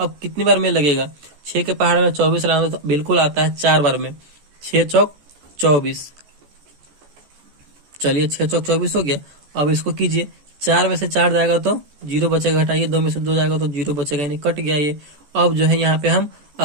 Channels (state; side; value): late; left; 14 ms